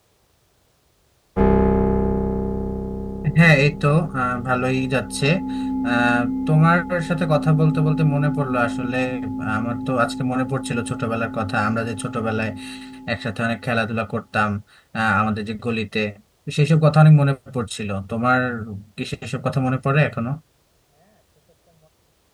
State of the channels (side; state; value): both; identical; correlation 1.00